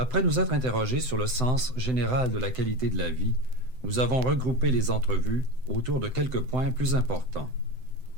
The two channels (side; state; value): left; late; 7.8 ms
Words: nous être interrogés sur le sens général de la qualité de la vie, nous avons regroupé les entrevues autour de quelques points plus importants.